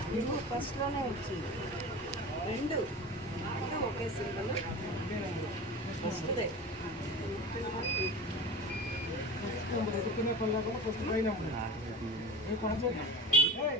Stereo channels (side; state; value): both; normal; correlation 0.34